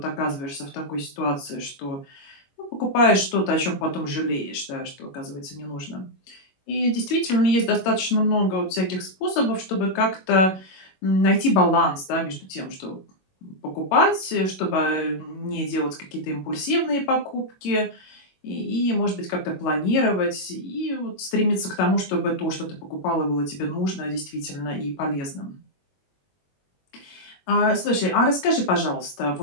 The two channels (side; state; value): right; late; 21 ms